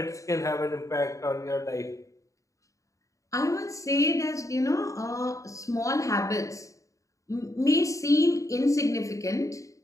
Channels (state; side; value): late; right; 0.16 ms